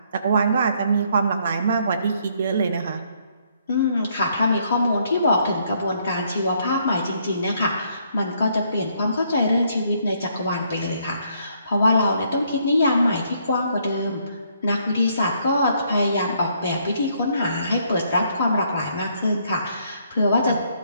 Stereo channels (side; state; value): both; inverted; correlation -0.69